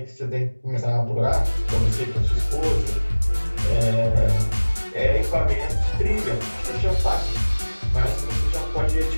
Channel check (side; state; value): both; inverted; correlation -1.00